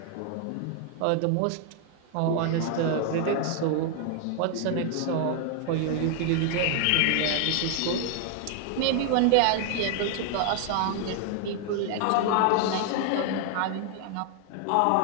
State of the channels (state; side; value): different; both; correlation 0.00